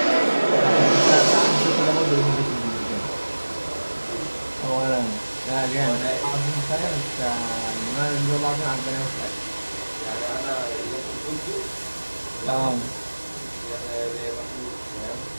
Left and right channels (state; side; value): inverted; both; correlation -1.00